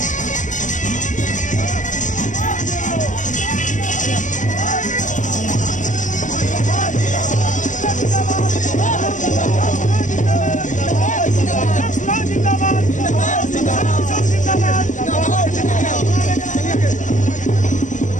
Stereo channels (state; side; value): late; right; 0.36 ms